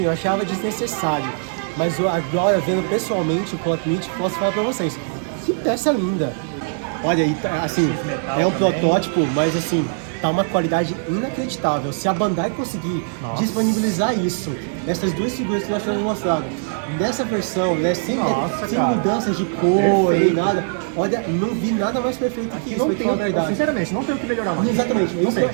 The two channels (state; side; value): silent; left; digital silence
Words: eu achava desnecessário. Mas agora, vendo pessoalmente o plot meat, posso falar pra vocês. Que peça linda. Olha aí, assim, é um protótipo, mas assim, tá uma qualidade inacreditável. Se a Bandai conseguir disponibilizar isso, essas duas figuras que nós temos mostrado, nessa versão, né, sem Cara. mudanças de cor, nem Perfeito. nada, olha, não vi nada mais perfeito que isso, Não pra te tem, falar a verdade. sinceramente, não tem o que melhorar mais. Exatamente, Não tem.